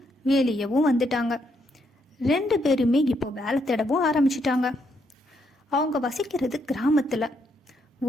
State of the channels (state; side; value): normal; both; correlation 0.76